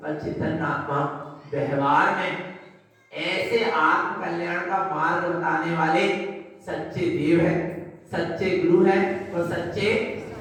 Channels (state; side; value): identical; both; correlation 1.00